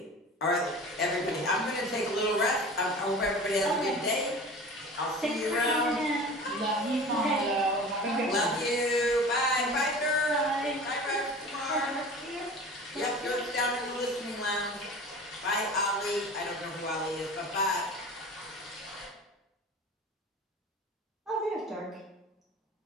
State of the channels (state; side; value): normal; both; correlation 0.38